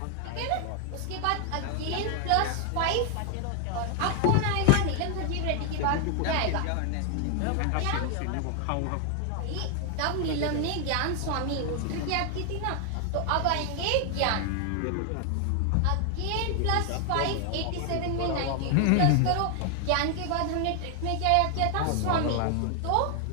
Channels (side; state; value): both; different; correlation 0.00